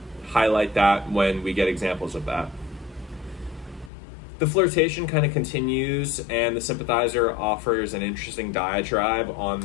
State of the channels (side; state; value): right; drops out; at 3.9 s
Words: highlight that when we get examples of that. The flirtation kind of continues, and the Sympathizer offers an interesting diatribe on